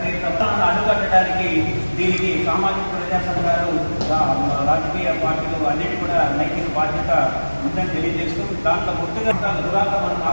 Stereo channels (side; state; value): both; inverted; correlation -1.00